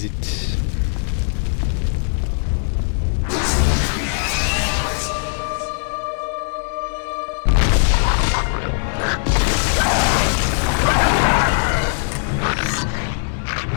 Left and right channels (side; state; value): right; silent; 63 dB below the other